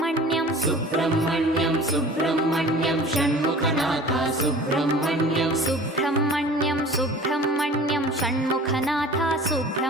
सुब्रह्मण्यं सुब्रह्मण्यं षण्मुखनाथ सुब्रह्मण्यं सुब्रह्मण्यं सुब्रह्मण्यं षण्मुखनाथ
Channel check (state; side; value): normal; both; correlation 0.43